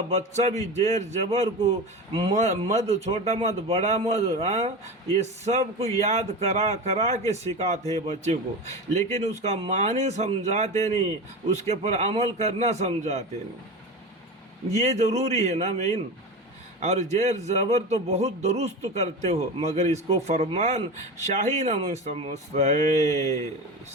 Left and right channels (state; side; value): normal; both; correlation 0.26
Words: بچہ بھی زیر زبر کو مد، چھوٹا مد، بڑا مد، یہ سب کو یاد کرا کے سکھاتے ہیں بچے کو، لیکن اس کا معنی سمجھاتے نہیں، اس کے پر عمل کرنا سمجھاتے نہیں۔ یہ ضروری ہے نا مین۔ اور زیر زبر تو بہت درست کرتے ہو، مگر اس کو فرمان شاہی نہ سمجھتے۔